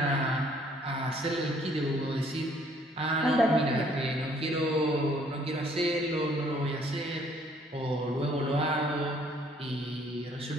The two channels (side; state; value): both; normal; correlation 0.62